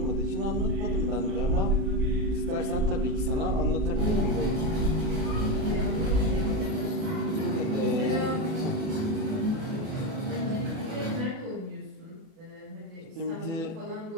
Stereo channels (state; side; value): late; left; 36 ms